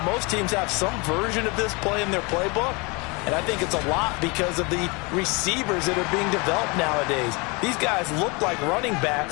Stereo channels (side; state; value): right; quieter; 28.4 dB